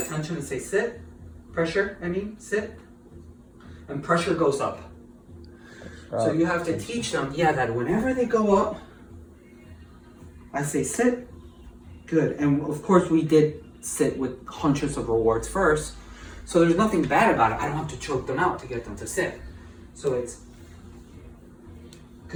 tension and say sit. Pressure, sit. And pressure goes up. So you have to teach them, that whenever they go up, I say sit. Good. And of course we did sit with hundreds of rewards first. So there's nothing bad about it. I don't have to choke them out to get them to sit. So it's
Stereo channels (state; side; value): identical; both; correlation 1.00